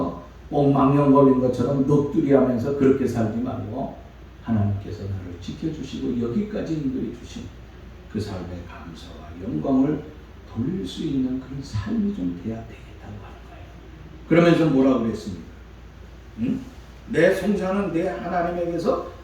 옥망령 걸린 것처럼 넋두리하면서 그렇게 살지 말고, 하나님께서 나를 지켜주시고 여기까지 인도해 주신 그 삶의 감사와 영광을 돌릴 수 있는 그런 삶이 좀 돼야 되겠다고 하는 거예요. 그러면서 뭐라고 그랬습니까? 응? 내 송사는 내 하나님에게서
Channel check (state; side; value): identical; both; correlation 1.00